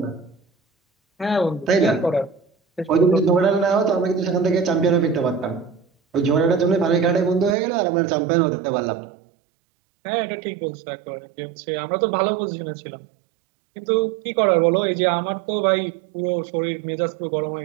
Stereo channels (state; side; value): drops out; left; at 7.6 s